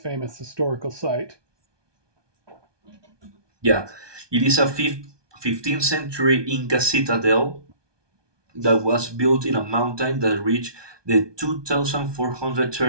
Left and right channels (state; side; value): late; left; 1.2 ms